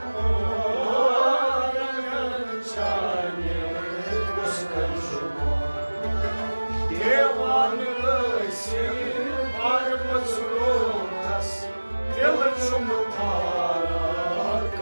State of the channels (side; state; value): both; inverted; correlation -1.00